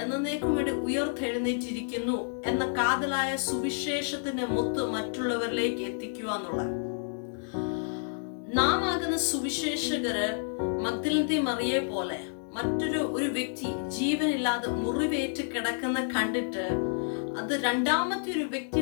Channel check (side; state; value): right; silent; digital silence